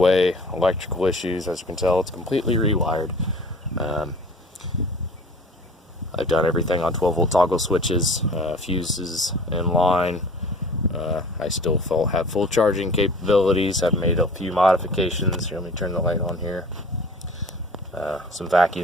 electrical issues. As you can tell, it's completely rewired. I've done everything on 12-volt toggle switches, fuses in line. I still have full charging capabilities. I've made a few modifications. Here, let me turn the light on here. Some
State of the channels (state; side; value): normal; both; correlation 0.45